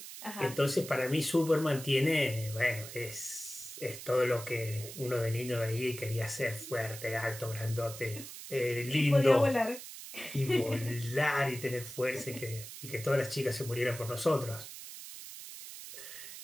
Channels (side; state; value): right; noise; hiss, 12 dB below the sound